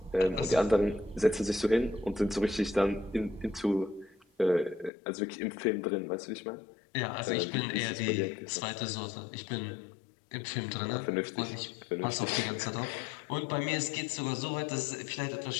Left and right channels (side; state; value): right; drops out; at 4.9 s